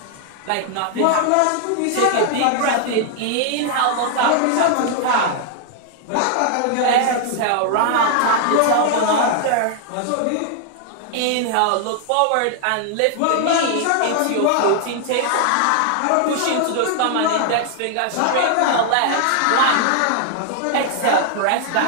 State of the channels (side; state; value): both; different; correlation 0.00